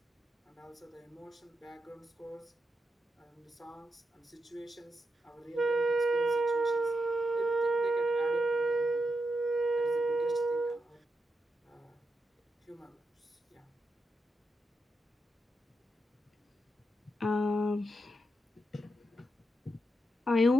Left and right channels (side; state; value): both; normal; correlation 0.85